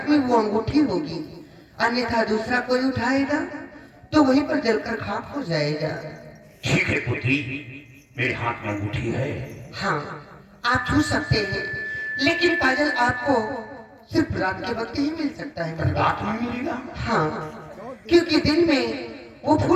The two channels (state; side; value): identical; both; correlation 1.00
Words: में वो अंगूठी होगी, अन्यथा दूसरा कोई उठाएगा तो वहीं पर जलकर खाक हो जाएगा। ठीक है पुत्री, मेरे हाथ में अंगूठी है। हाँ आप छू सकते हैं, लेकिन काजल आपको सिर्फ रात के वक्त ही मिल सकता है। रात में मिलेगा? हाँ, क्योंकि दिन में वो